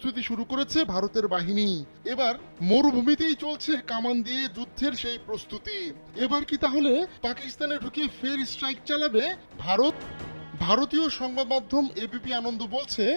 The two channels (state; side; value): inverted; both; correlation -1.00